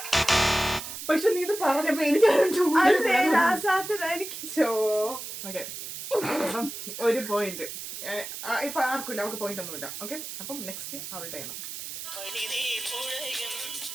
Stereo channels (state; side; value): noise; right; hiss, 9 dB below the sound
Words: പക്ഷെ നീ ഇത് പറഞ്ഞപ്പോ എനിക്ക് ഒരു പോയിന്റ് ഇപ്പൊ ആർക്കില്ല, അവർക്ക് പോയിന്റ് ഒന്നുമില്ല. ഓക്കെ, അപ്പം നെക്സ്റ്റ് അവളുടെ ആണ്.